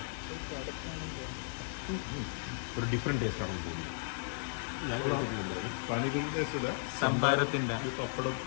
ഒരു ഡിഫറെന്റ് ടേസ്റ്റ് ആണ് തോന്നുന്നത്. പാനിപൂരി ടേസ്റ്റ് ഇല്ല, സംഭാരത്തിന്റെ പപ്പടം,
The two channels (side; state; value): right; silent; 54 dB below the other